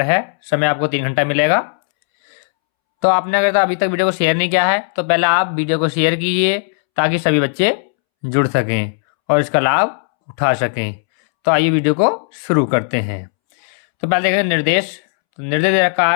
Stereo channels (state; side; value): silent; right; 68 dB below the other